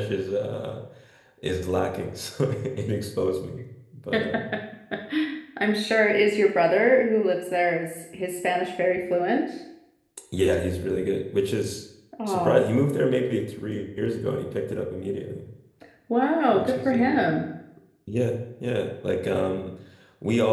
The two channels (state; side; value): identical; both; correlation 1.00